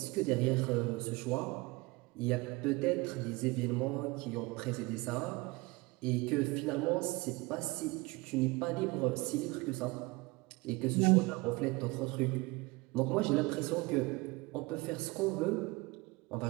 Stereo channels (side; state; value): left; quieter; 23.7 dB